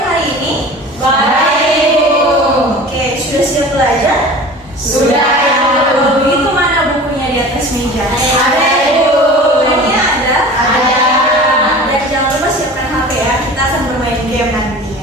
hari ini? Baik, Ibu. Oke, sudah siap belajar? Sudah, Ibu. Kalau begitu mana bukunya di atas meja? Ada, Ibu. Bukunya ada? Ada. Dan jangan lupa siapkan HP ya. Kita akan bermain game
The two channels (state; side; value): normal; both; correlation 0.39